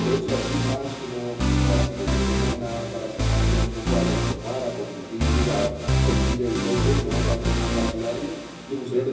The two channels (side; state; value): both; identical; correlation 1.00